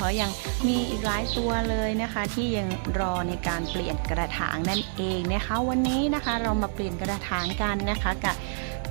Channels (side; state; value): left; silent; 60 dB below the other